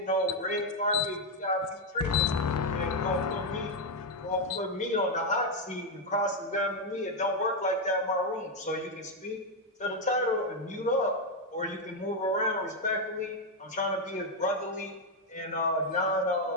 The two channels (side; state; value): both; normal; correlation 0.03